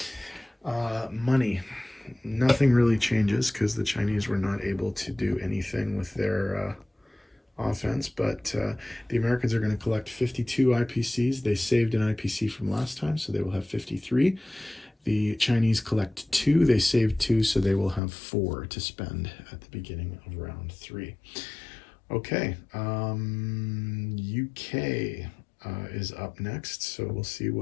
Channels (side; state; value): right; drops out; at 18.0 s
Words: Money. Nothing really changes because the Chinese were not able to do anything with their offense, but the Americans are going to collect 52 IPCs. They saved an IPC from last time, so they will have 53. The Chinese collect 2. They saved 2, so they will have 4 to spend at the beginning of round 3. Okay, UK is up next, so we'll see